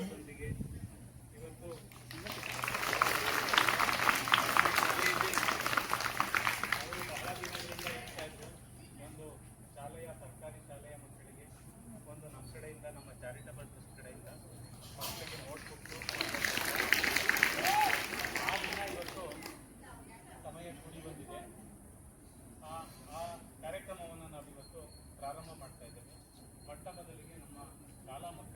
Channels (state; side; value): identical; both; correlation 1.00